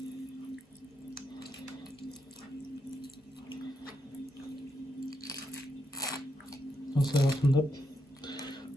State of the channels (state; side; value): normal; both; correlation 0.82